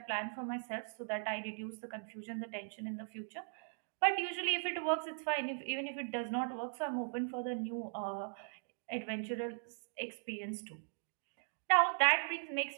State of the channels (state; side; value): silent; left; digital silence